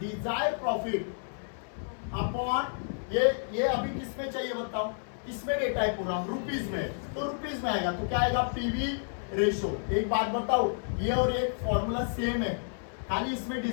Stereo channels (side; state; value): right; silent; 57 dB below the other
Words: profit upon ये अभी किसमें चाहिए बताओ? किसमें डेटा है पूरा? रुपीज में। तो रुपीज में आएगा तो क्या आएगा? PV ratio. एक बात बताओ, ये और एक फॉर्मूला सेम है, खाली इसमें